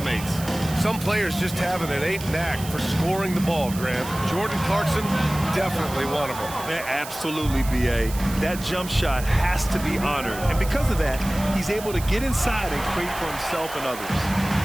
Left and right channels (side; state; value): right; noise; hiss, 13 dB below the sound